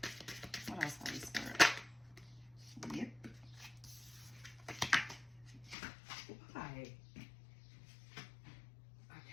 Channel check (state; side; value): drops out; right; at 5.8 s